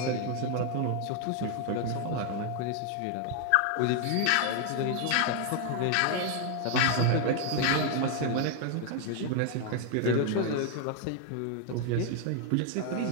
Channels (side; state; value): both; different; correlation 0.00